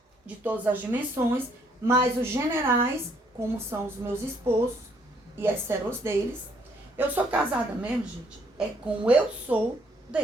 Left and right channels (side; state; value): both; normal; correlation 0.67